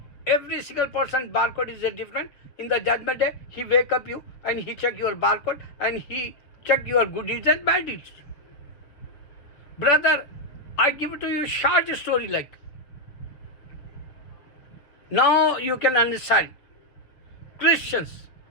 Every single person barcode is different. In the judgment day, he wake up you and he check your barcode and he check your good deeds and bad deeds. Brother, I give it to you short story like. Now you can understand. Christians,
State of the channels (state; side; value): late; right; 7.1 ms